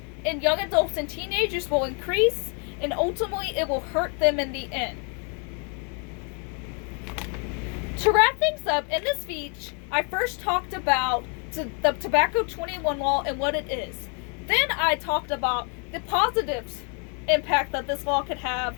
in young adults and teenagers will increase, and ultimately it will hurt them in the end. To wrap things up, in this speech, I first talked about the Tobacco 21 law and what it is. Then I talked about the positive impact that this law could have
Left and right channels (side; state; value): right; quieter; 38.0 dB